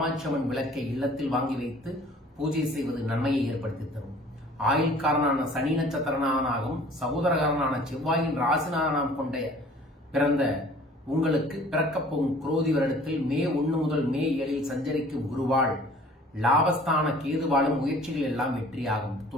அம்மன் விளக்கை இல்லத்தில் வாங்கி வைத்து பூஜை செய்வது நன்மையை ஏற்படுத்தி தரும். ஆயுள்காரனான சனி நட்சத்திரனாகவும் சகோதரகாரனான செவ்வாயின் ராசிநாதனம் கொண்ட பிறந்த உங்களுக்கு பிறக்கப் போகும் குரோதி வருடத்தில் மே 1 முதல் மே 7 சஞ்சரிக்கும் குருவால் லாபஸ்தான கேதுவாலும் முயற்சிகள் எல்லாம் வெற்றியாகும்.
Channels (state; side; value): normal; both; correlation 0.51